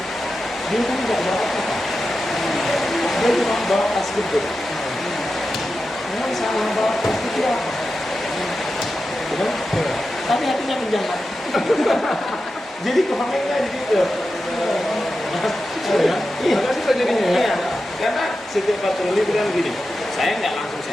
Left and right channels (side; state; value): both; normal; correlation 0.91